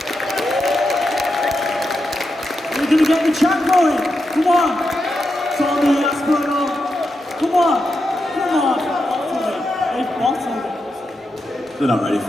We're gonna get the chat going. Come on, Tommy Aspinall. Come on. Bottle it. They've bottled it. They're not ready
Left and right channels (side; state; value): both; normal; correlation 0.87